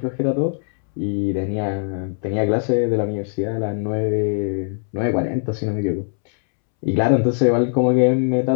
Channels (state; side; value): silent; right; 65 dB below the other